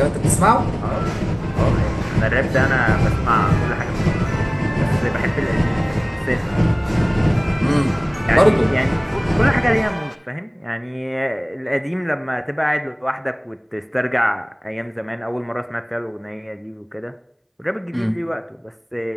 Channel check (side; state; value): both; identical; correlation 1.00